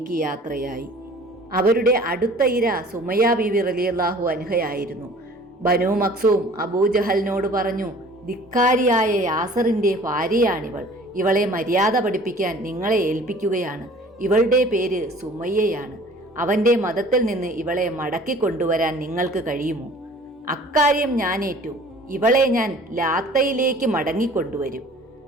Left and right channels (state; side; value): normal; both; correlation 0.49